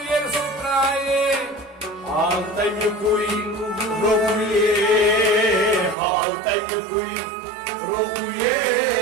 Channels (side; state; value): left; drops out; at 6.0 s